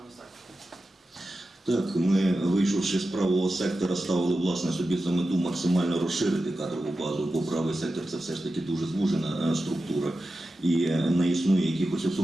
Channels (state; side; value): normal; both; correlation 0.92